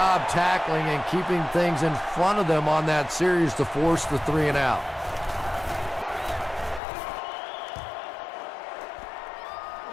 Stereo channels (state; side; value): drops out; right; at 6.8 s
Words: tackling and keeping things in front of them on that series to force the 3 and out.